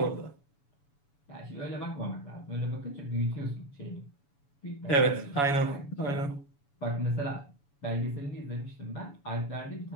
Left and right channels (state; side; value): late; right; 7.0 ms